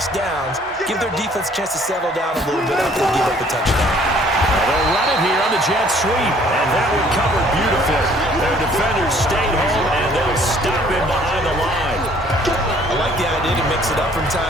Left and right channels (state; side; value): normal; both; correlation 0.59